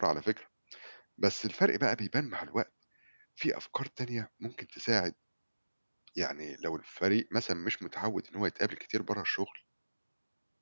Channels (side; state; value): both; inverted; correlation -1.00